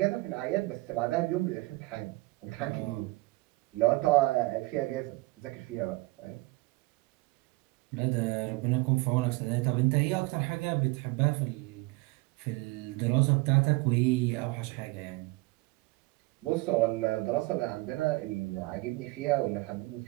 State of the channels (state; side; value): quieter; left; 22.9 dB